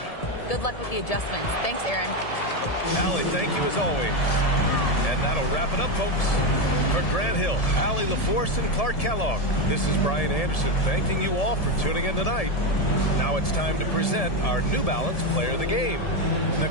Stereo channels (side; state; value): right; late; 1.7 ms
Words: Good luck with the adjustments. Thanks, Aaron. Allie, thank you as always. And that'll wrap it up, folks. For Grant Hill, Allie LaForce, and Clark Kellogg, this is Brian Anderson thanking you all for tuning in tonight. Now it's time to present our New Balance Player of the Game,